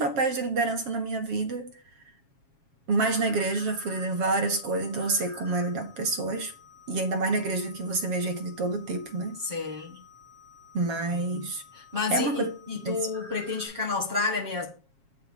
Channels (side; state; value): left; late; 7.3 ms